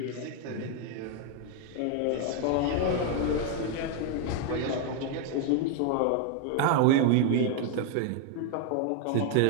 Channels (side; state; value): both; different; correlation 0.00